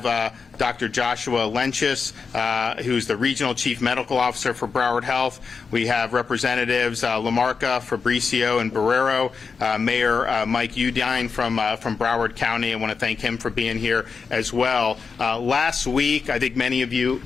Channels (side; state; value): right; quieter; 5.3 dB